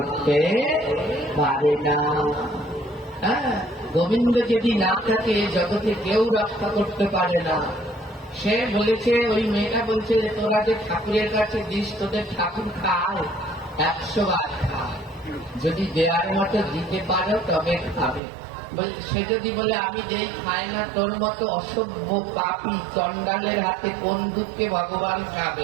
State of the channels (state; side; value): drops out; left; at 18.2 s